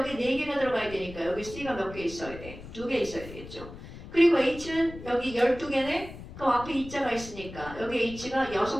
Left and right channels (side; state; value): left; noise; rumble, 14 dB below the sound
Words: 4개가 들어가야 되니까 여기 C가 몇 개 있어야 돼? 2개 있어야 되겠죠. 그리고 H는 여기 12개네? 그럼 앞에 E자가 있으니까 여기 H가